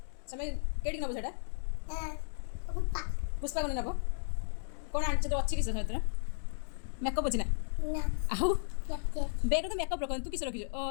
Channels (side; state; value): right; silent; digital silence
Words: समय केडी नबो सेटा पुष्पा को नबो कौन आनछ तो अच्छी किस सहित मेकअप अछि ना आउ बेग तो मेकअप रखन तू किस रखिजो